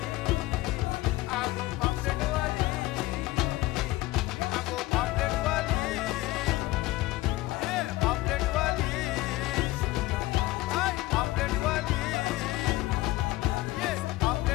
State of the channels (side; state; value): right; quieter; 18.4 dB